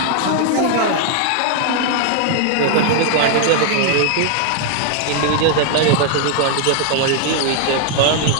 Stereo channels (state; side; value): different; both; correlation 0.00